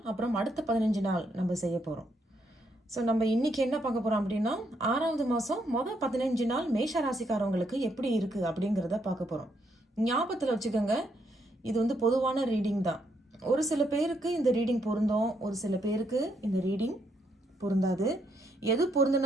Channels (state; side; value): normal; both; correlation 0.75